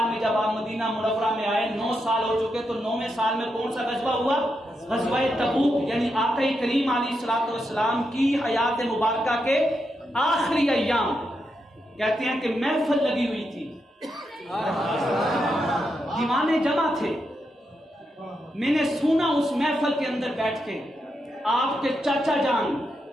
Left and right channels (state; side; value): normal; both; correlation 0.84